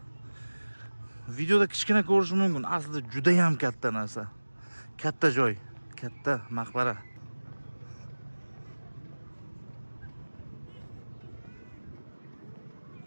videoda kichkina ko'rishi mumkin. Aslida juda ham katta narsa. Katta joy, katta maqbara.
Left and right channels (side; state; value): both; inverted; correlation -1.00